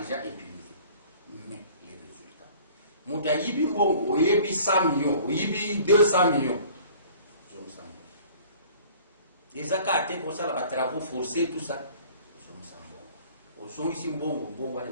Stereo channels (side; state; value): both; inverted; correlation -0.50